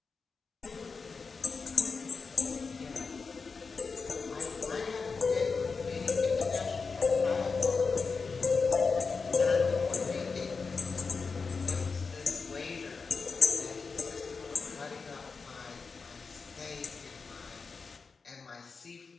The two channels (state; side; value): quieter; right; 4.8 dB